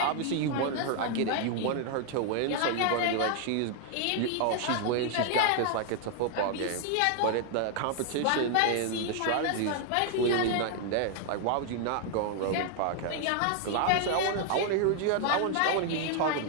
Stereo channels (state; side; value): different; both; correlation 0.00